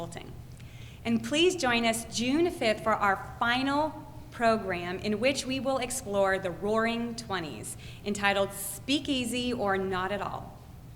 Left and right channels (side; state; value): both; identical; correlation 1.00